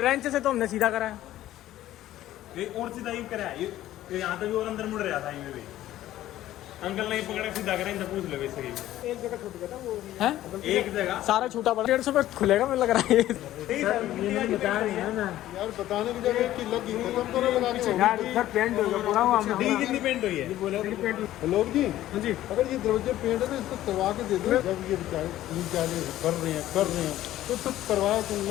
से तो हमने सीधा करा है। ये और सीधा यूं करा है, ये यहाँ तक भी और अंदर मुड़ रहा था, ये भी अंकल नहीं पकड़े सीधा करें तो पूछ लो वैसे ही। एक जगह छूट गया था वो है, एक जगह सारा छूटा पड़ा। 150 रुपये खुलेगा मुझे लग रहा है। बताया नहीं है ना यार बताने की जगह कि लगी खत्म करो लगा के यार सर पेंट हो गया पूरा हुआ डी कितनी पेंट हुई है? लोग जी हाँ जी, अगर ये दरवाजे पेंट है तो इसको करवा के दे दो। जब ये बेचारे तीन चार कर रहे हैं तो सब करवाया तो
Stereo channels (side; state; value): right; quieter; 13.9 dB